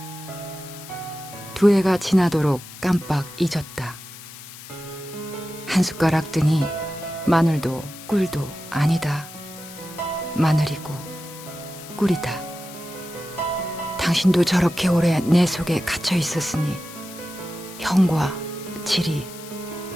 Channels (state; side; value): noise; left; hiss, 15 dB below the sound